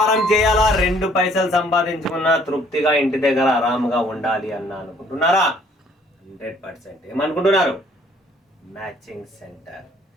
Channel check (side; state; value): both; normal; correlation 0.60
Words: చేయాలా, 2 పైసలు సంపాదించుకున్న తృప్తిగా ఇంటి దగ్గర ఆరాముగా ఉండాలి అన్న అనుకుంటున్నారా? 100% ఏమనుకుంటున్నారు? Matching centre.